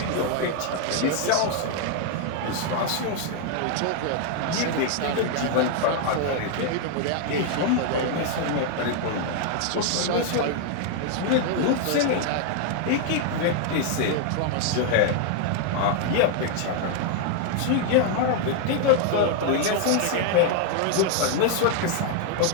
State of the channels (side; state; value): both; different; correlation 0.00